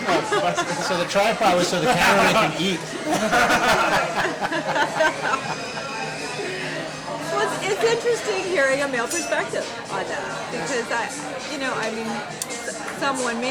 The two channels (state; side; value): identical; both; correlation 1.00